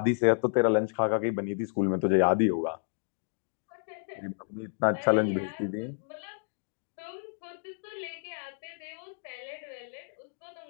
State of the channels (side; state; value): right; silent; digital silence